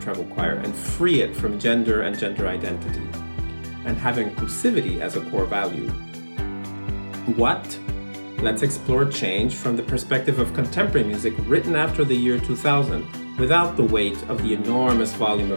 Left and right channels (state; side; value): inverted; both; correlation -1.00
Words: treble choir and free it from gender and gender identity, and have inclusivity as a core value. What? Let's explore change from the perspective of contemporary music written after the year 2000, without the weight of the enormous volume